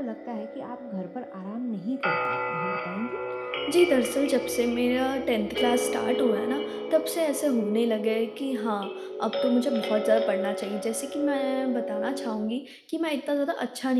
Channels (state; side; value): identical; both; correlation 1.00